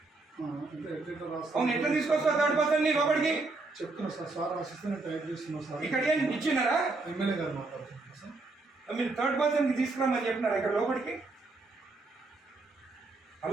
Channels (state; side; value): quieter; left; 3.4 dB